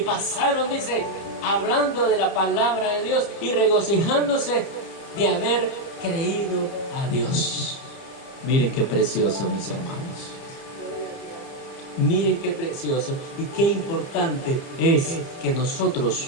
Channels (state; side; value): late; right; 30 ms